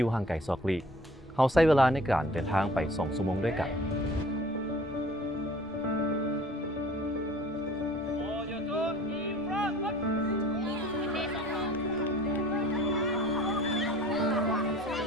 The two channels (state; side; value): normal; both; correlation 0.49